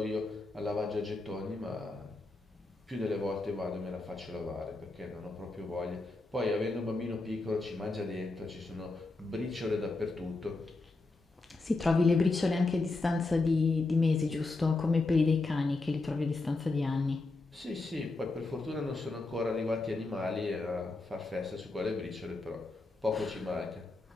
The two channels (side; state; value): right; quieter; 3.3 dB